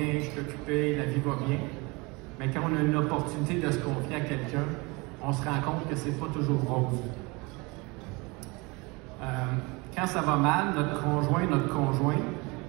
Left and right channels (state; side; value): quieter; left; 26.3 dB